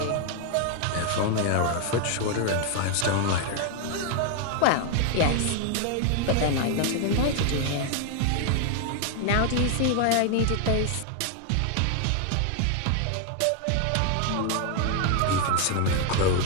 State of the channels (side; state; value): both; different; correlation 0.01